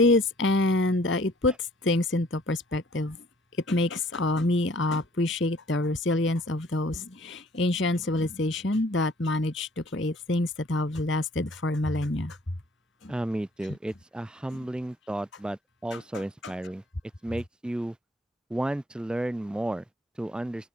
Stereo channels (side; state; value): both; normal; correlation 0.57